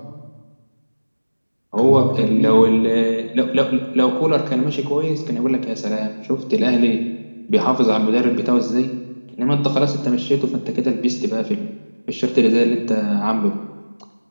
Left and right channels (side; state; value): both; inverted; correlation -1.00